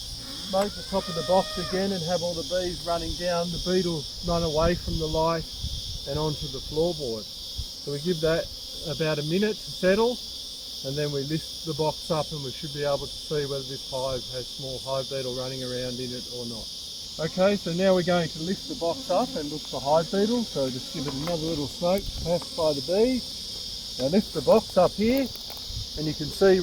smoke the top of the box again and have all the bees running down, the beetles run away from the light and onto the floorboard. So we give that about a minute to settle, and then we lift the box up and we should be able to see whether this hive has small hive beetle running around in it or not. Okay, so now we're going to lift the box up and look for hive beetle, so just give it another little smoke to pacify the bees. Now lift the box up here, and you can see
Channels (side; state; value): both; identical; correlation 1.00